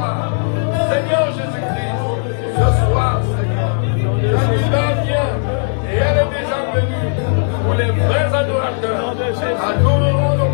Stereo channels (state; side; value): silent; right; 68 dB below the other